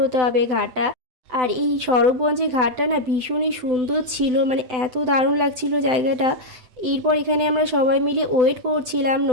হতে হবে ঘাটটা। আর এই স্বরূপগঞ্জের ঘাটটা না ভীষণই সুন্দর ছিল, মানে এত দারুণ লাগছিল জায়গাটা। এরপর এখানে আমরা সবাই মিলে ওয়েট করছিলাম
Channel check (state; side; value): late; left; 7.9 ms